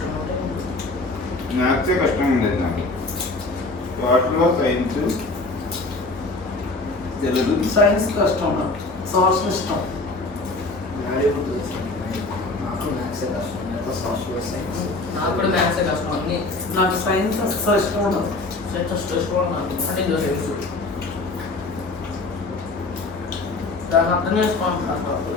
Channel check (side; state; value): right; quieter; 3.2 dB